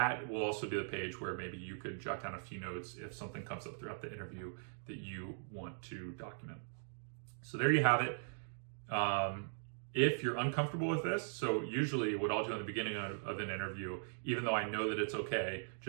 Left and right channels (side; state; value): left; silent; digital silence